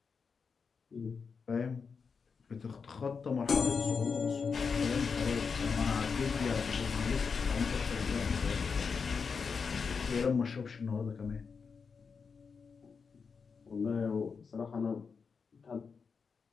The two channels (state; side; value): quieter; right; 5.5 dB